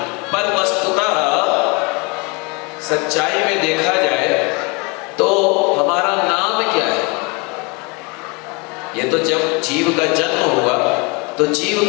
पर वस्तुतः सच्चाई में देखा जाए तो हमारा नाम क्या है? ये तो जब जीव का जन्म हुआ, तो जीव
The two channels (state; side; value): quieter; right; 29.5 dB